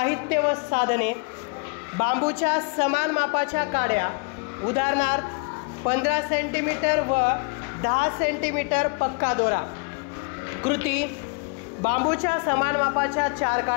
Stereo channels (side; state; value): right; quieter; 34.0 dB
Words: व साधने. बांबूच्या समान मापाच्या काड्या, उदाहरणार्थ 15 सेंटीमीटर व 10 सेंटीमीटर पक्का दोरा. कृती: बांबूच्या समान मापाच्या 4